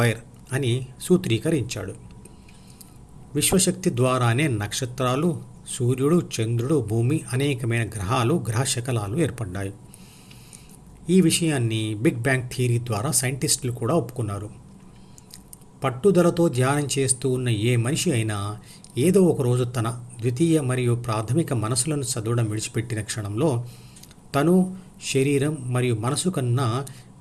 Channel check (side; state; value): both; identical; correlation 1.00